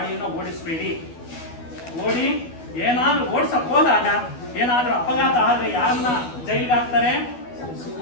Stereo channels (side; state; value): right; late; 12 ms